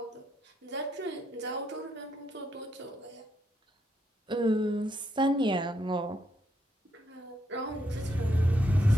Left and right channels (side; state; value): both; normal; correlation 0.78